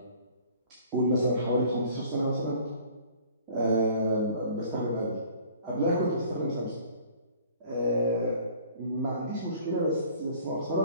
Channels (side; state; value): both; inverted; correlation -0.51